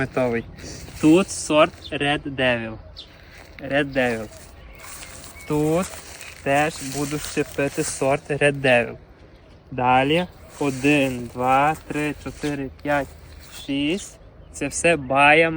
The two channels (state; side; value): identical; both; correlation 1.00